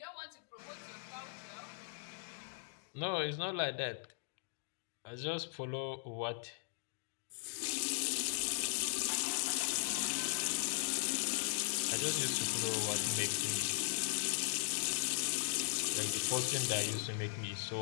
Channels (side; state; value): right; silent; digital silence